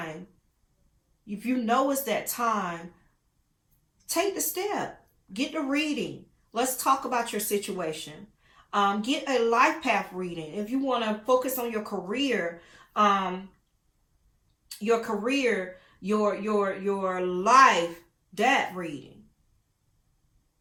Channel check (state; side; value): identical; both; correlation 1.00